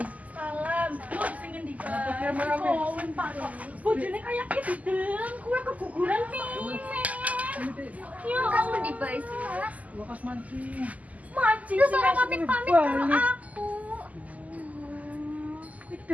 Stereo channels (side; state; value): left; late; 0.075 ms